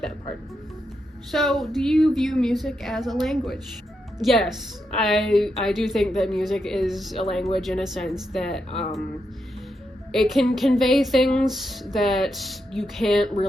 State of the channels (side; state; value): both; normal; correlation 0.84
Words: that part. So, do you view music as a language? Yes, I do think that music is a language, in a sense that it can convey things that you can't